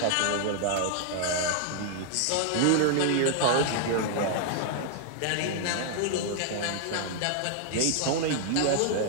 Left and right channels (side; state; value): both; different; correlation 0.00